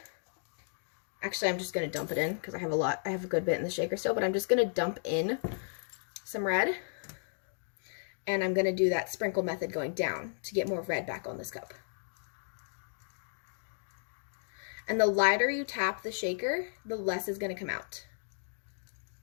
Actually, I'm just going to dump it in because I have a good bit in the shaker still, but I'm just going to dump in some red. And I'm going to do that sprinkle method going down to get more red back on this cup. And the lighter you tap the shaker, the less is going to come out.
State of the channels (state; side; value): silent; right; digital silence